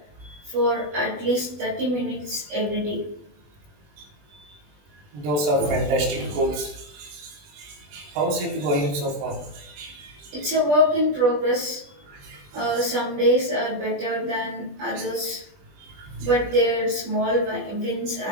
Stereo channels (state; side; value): late; left; 20 ms